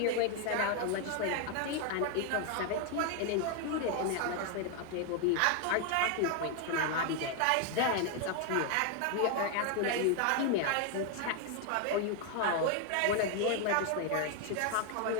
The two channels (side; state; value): both; different; correlation 0.01